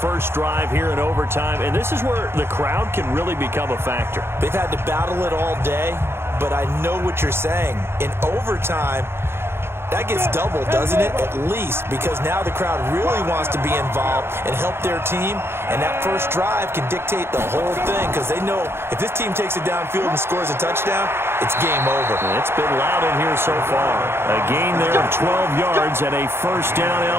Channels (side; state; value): left; late; 0.12 ms